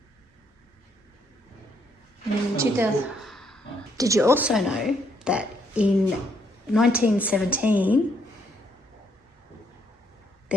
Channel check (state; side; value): normal; both; correlation 0.71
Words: And in 2000, did you also know that in 1917